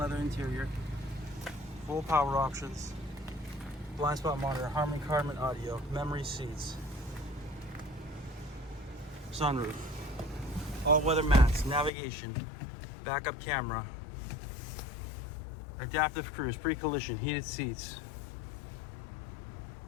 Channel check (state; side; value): drops out; right; at 11.9 s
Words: interior, full power options, blind spot monitor, Harman Kardon audio, memory seats, sunroof, all-weather mats, navigation, backup camera, adaptive cruise, pre-collision, heated seats.